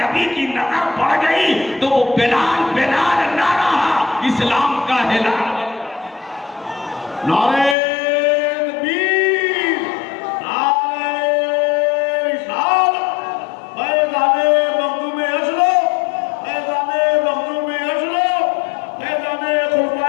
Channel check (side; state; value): right; drops out; at 7.8 s